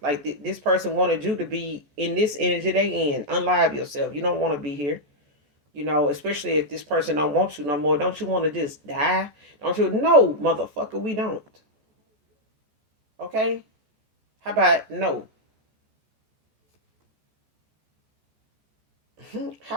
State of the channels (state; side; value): late; left; 14 ms